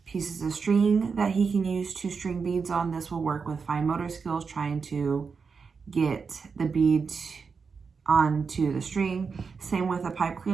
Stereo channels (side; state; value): left; quieter; 5.4 dB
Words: pieces of string that he can use to string beads on. This will work with fine motor skills, trying to get the bead onto the string. Same with a pipe